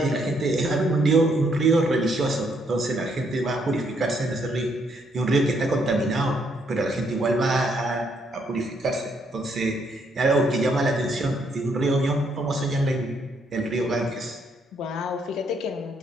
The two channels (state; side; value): normal; both; correlation 0.72